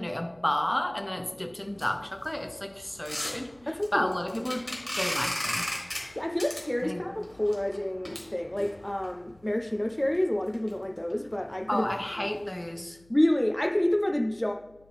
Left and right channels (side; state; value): left; noise; hum, 29 dB below the sound